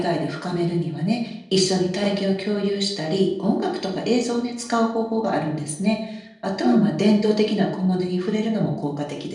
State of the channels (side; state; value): both; identical; correlation 1.00